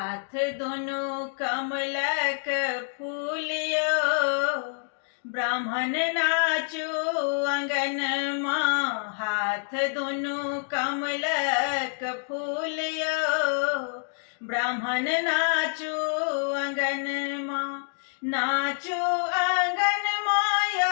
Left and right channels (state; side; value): silent; right; 60 dB below the other